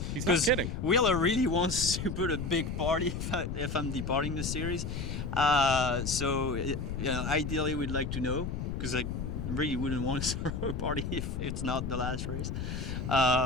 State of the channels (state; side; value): noise; left; rumble, 4 dB below the sound